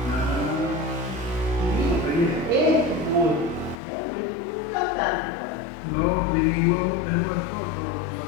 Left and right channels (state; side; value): drops out; right; at 3.8 s